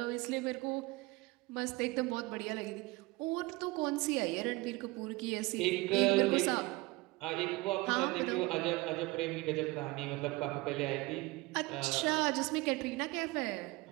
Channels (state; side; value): quieter; left; 22.5 dB